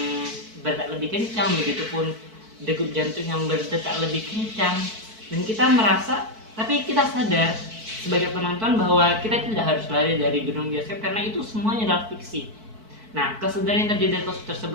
berdetak lebih kencang, begitupun degup jantung yang berdetak lebih kencang, dan kita merasa, tapi kita sadar sebagai penonton bahwa kita tidak harus lari dari gedung bioskop karena itu semuanya adalah fiksi. Nah, kesadaran yang terjadi dari kasus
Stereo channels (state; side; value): late; left; 4.6 ms